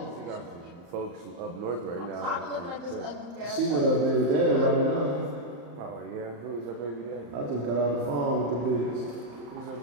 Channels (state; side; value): late; left; 35 ms